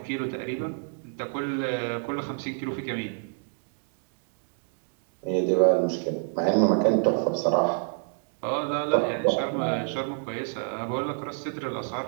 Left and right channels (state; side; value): silent; left; digital silence